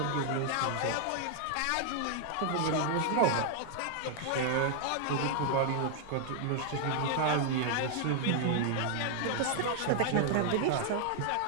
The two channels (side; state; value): both; different; correlation 0.00